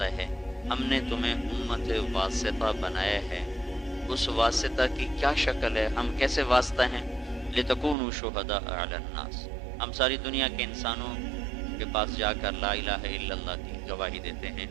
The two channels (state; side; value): drops out; left; at 8.0 s